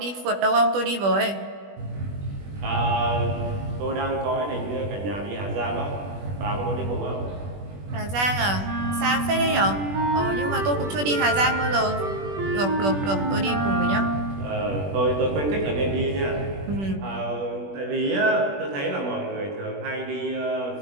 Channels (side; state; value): left; late; 20 ms